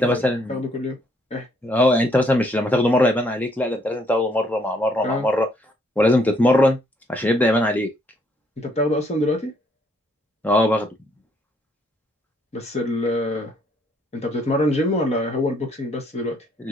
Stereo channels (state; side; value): normal; both; correlation 0.68